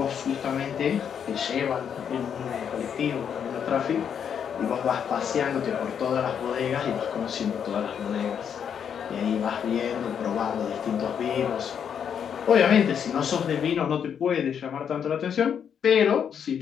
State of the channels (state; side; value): quieter; right; 7.9 dB